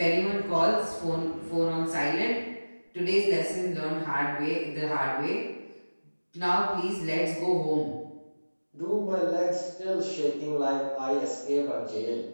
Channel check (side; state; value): both; inverted; correlation -1.00